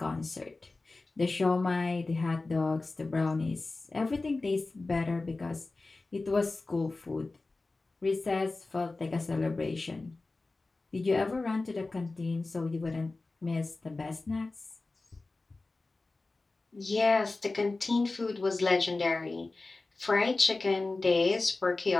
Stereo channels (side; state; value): right; quieter; 3.4 dB